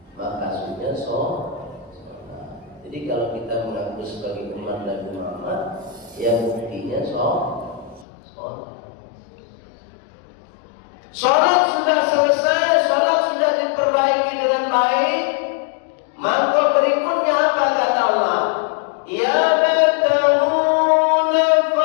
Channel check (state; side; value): drops out; right; at 8.1 s